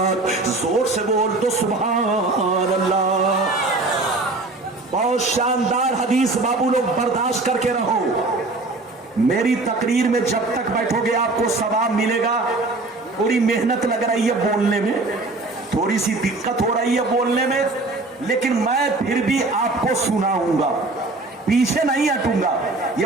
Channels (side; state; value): left; quieter; 3.2 dB